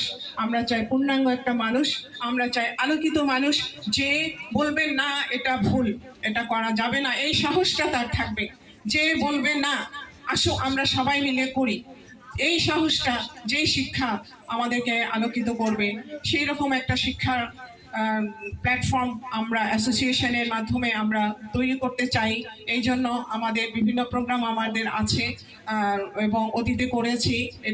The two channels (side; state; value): both; identical; correlation 1.00